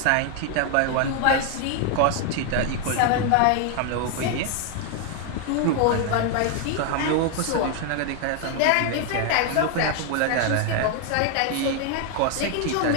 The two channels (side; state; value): both; different; correlation 0.01